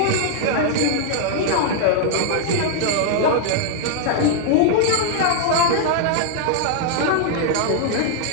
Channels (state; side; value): different; both; correlation -0.01